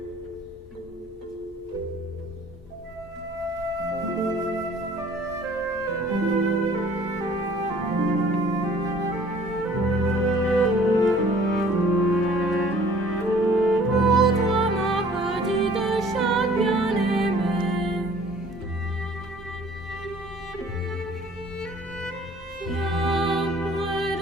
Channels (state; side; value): normal; both; correlation 0.53